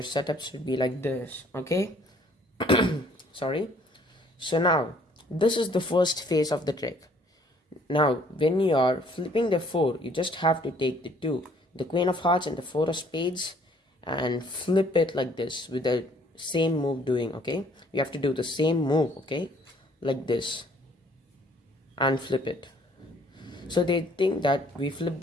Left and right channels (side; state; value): both; normal; correlation 0.60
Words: setup should be like this, okay? Sorry. So now this is the first phase of the trick. Now when you are flipping the 4, you just have to take the 2, the queen of hearts and the 4 of spades, and flip it like this with the same move doing, okay? You have to do the same move, okay? Like this, and flip it. So they think that we flip